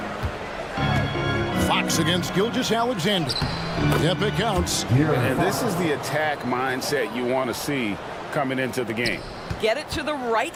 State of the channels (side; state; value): both; identical; correlation 1.00